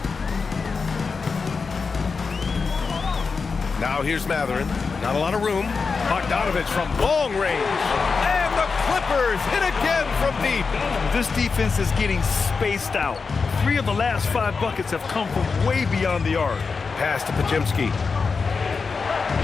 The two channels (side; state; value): right; quieter; 4.9 dB